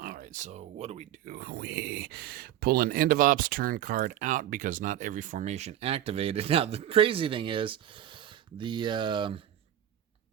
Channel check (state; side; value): quieter; left; 11.8 dB